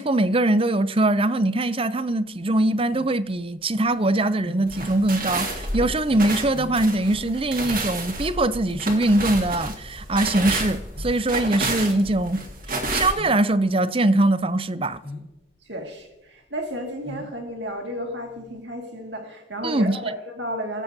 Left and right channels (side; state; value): both; normal; correlation 0.60